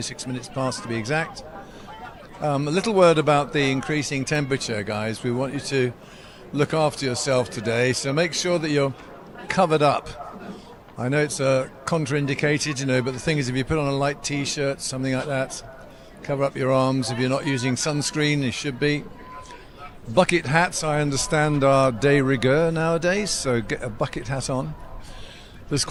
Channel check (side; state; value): both; identical; correlation 1.00